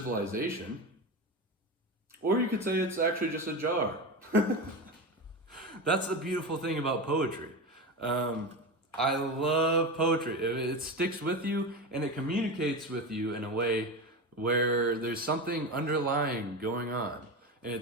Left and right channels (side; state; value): both; normal; correlation 0.21